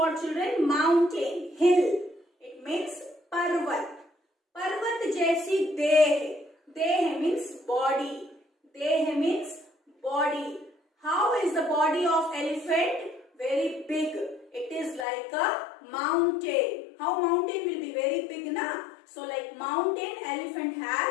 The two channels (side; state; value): right; drops out; at 15.1 s